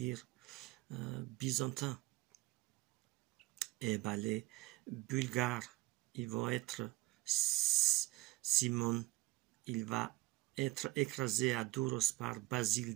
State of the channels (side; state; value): left; quieter; 19.9 dB